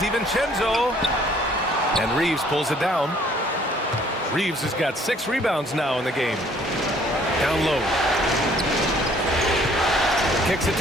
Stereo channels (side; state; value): both; normal; correlation 0.59